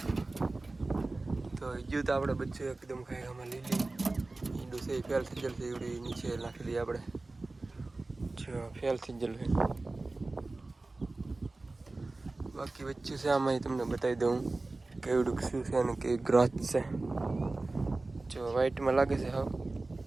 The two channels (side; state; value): left; quieter; 3.2 dB